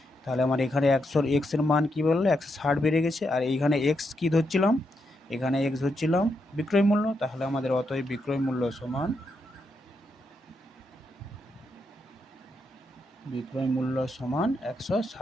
তাহলে আমার এখানে 100 এক্সের মান কি বললো 160 বেড়ে গেছে, আর এইখানে এক্স কি ধরছিলাম, এখানে এক্স ধরছিলাম বিক্রয় মূল্য, তাহলে আমাদের অতএব বিক্রয় মূল্য সমান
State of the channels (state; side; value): normal; both; correlation 0.82